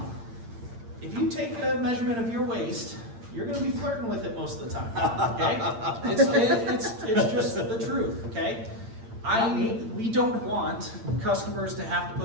If you take a measurement of your waist, you're going to be flirting with it most of the time. Okay, it's just the truth. Okay, we don't want customers to have to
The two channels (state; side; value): late; left; 8.8 ms